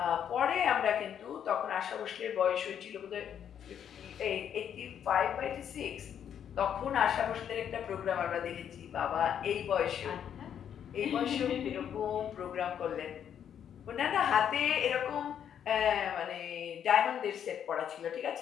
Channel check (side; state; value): right; quieter; 9.0 dB